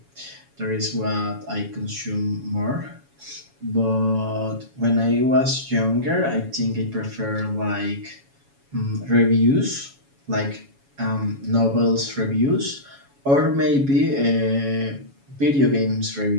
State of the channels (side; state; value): left; late; 7.2 ms